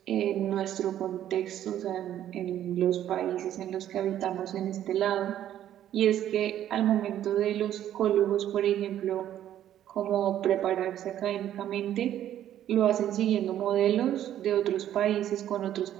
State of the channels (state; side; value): quieter; left; 11.4 dB